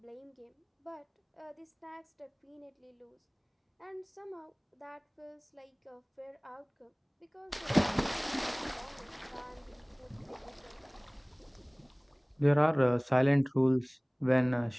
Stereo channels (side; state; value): both; identical; correlation 1.00